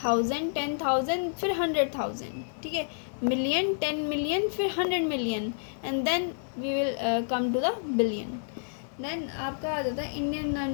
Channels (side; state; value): right; silent; 58 dB below the other